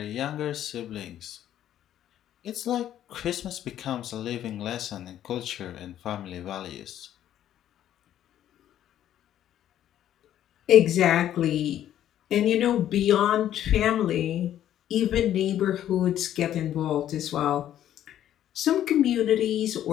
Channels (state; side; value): quieter; right; 11.5 dB